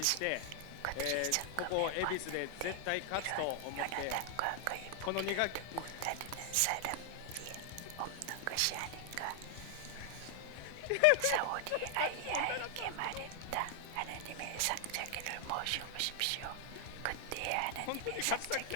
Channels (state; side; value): different; both; correlation 0.00